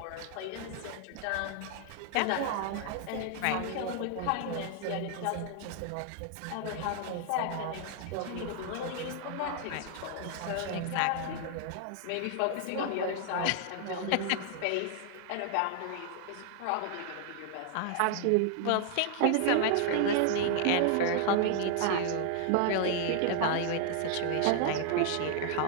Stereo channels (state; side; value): different; both; correlation 0.00